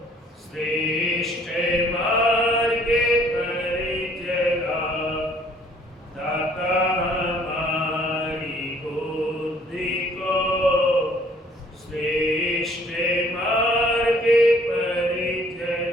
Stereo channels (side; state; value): both; normal; correlation 0.59